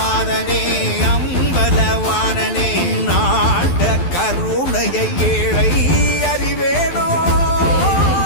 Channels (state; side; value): late; right; 12 ms